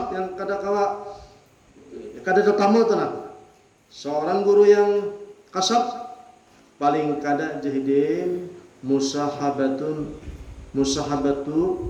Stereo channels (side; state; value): both; identical; correlation 1.00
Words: yang kada tetamu tenang. Seorang guru yang kasab, paling kada jahidin musahabatu